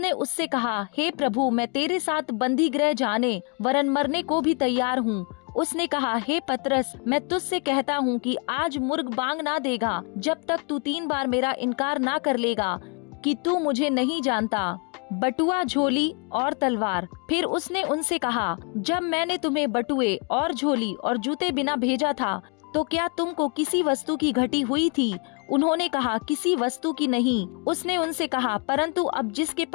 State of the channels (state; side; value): quieter; right; 36.0 dB